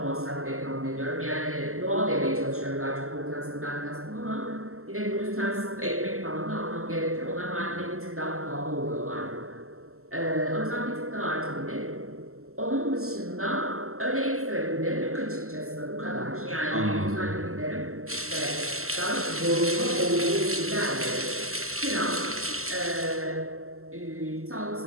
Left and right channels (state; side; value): late; left; 0.63 ms